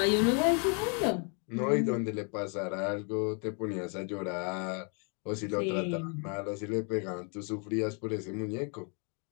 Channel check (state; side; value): quieter; right; 37.9 dB